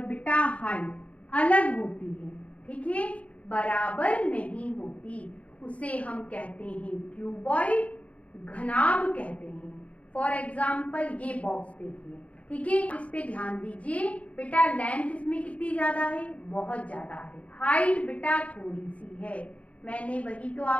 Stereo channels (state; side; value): late; right; 0.066 ms